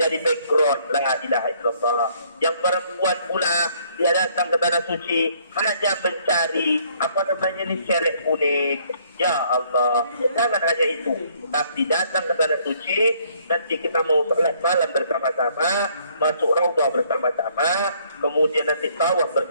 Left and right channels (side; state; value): both; inverted; correlation -0.64